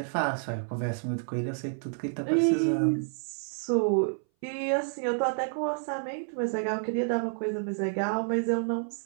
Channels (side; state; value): left; silent; 58 dB below the other